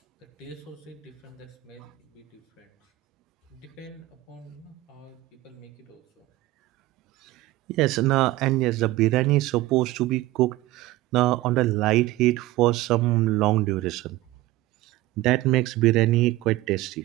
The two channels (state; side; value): quieter; left; 17.5 dB